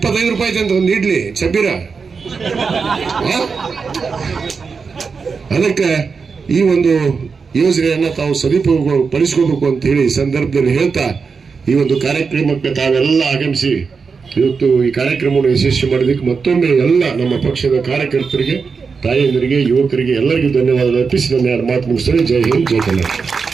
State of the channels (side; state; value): left; quieter; 5.2 dB